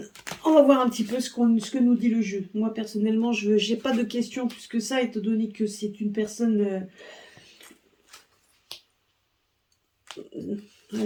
On va voir un petit peu ce que nous dit le jeu. Moi personnellement, je n'ai pas de questions plus que ça, étant donné que c'est une personne.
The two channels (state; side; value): identical; both; correlation 1.00